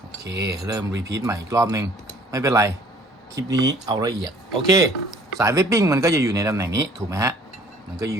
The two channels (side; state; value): both; normal; correlation 0.55